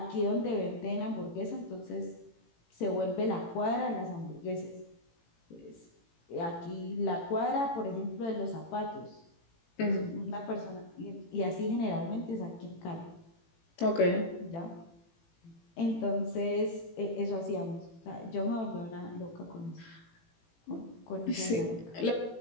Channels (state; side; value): late; right; 18 ms